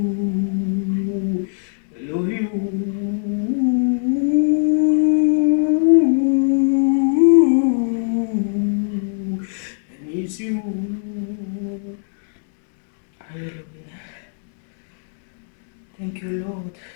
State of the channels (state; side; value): silent; right; digital silence